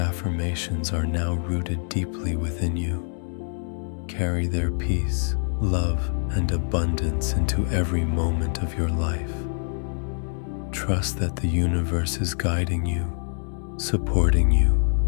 are now rooted deeply within you. Carry their peace, love, and abundance into every moment of your life. Trust that the universe is guiding you, supporting you,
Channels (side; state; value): right; silent; 62 dB below the other